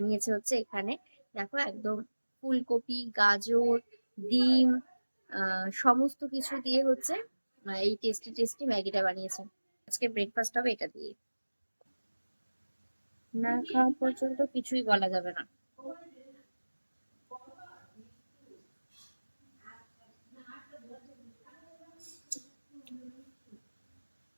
হচ্ছে এখানে, দেখো একদম ফুলকপি, গাজর, ডিম, সমস্ত কিছু দিয়ে হচ্ছে এই টেস্টি টেস্টি ম্যাগিটা বানিয়েছে। আজকে ব্রেকফাস্ট হবে এটা দিয়ে। না খাওয়া পর্যন্ত কিছুই বলা যাবে না।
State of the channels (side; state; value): both; inverted; correlation -1.00